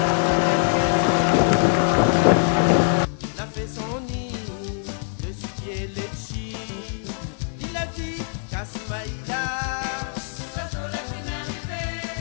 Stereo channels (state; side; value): silent; right; 58 dB below the other